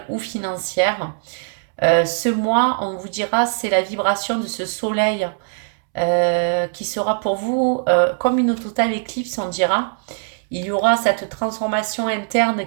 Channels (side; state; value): left; silent; 65 dB below the other